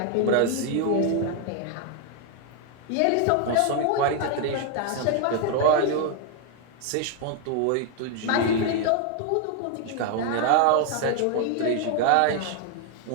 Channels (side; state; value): both; different; correlation 0.00